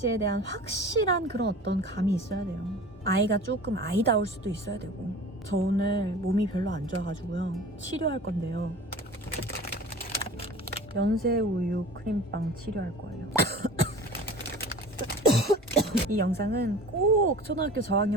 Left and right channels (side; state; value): both; normal; correlation 0.40